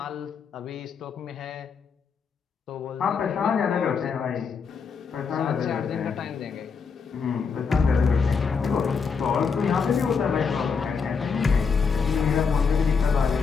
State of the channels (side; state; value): right; quieter; 5.6 dB